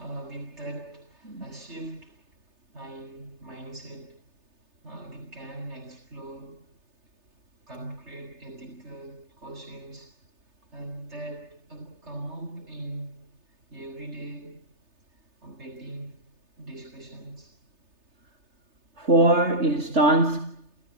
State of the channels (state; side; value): late; left; 3.3 ms